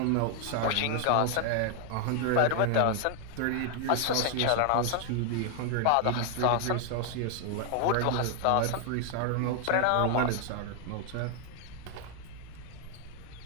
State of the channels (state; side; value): different; both; correlation 0.00